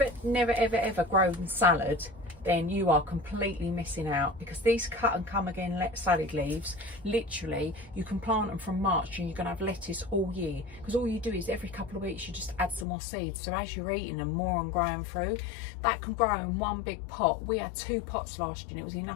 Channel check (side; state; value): right; drops out; at 12.9 s